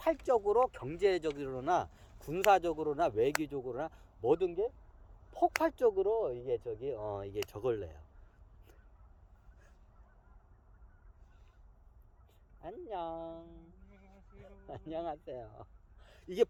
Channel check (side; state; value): both; identical; correlation 1.00